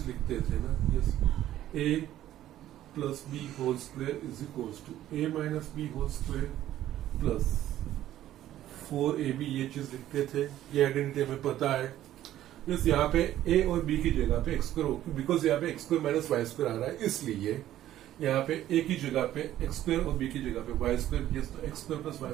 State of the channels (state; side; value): quieter; left; 12.9 dB